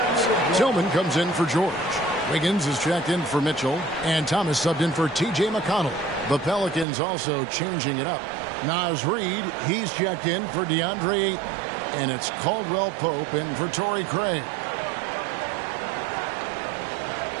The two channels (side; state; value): left; drops out; at 6.9 s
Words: Tillman comes in for George. Wiggins is checked in for Mitchell. And Thomas subbed in for T.J. McConnell. The Pelicans also changing it up. Naz Reid, he's checked in for DeAndre Ayton. And it's Caldwell Pope in for Torrey Craig.